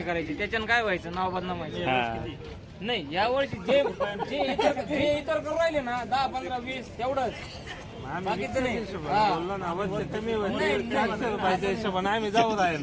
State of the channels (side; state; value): both; identical; correlation 1.00